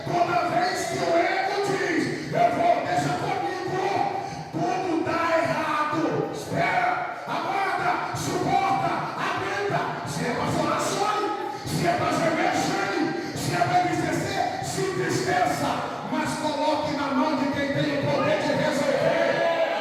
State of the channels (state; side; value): identical; both; correlation 1.00